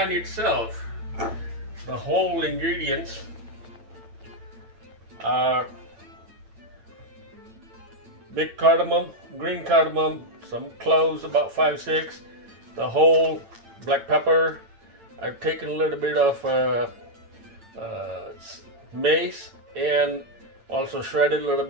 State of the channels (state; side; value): late; left; 8.9 ms